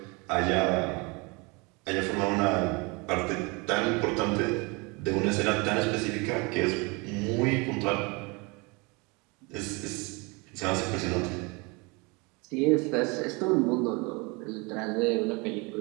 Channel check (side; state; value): left; quieter; 28.0 dB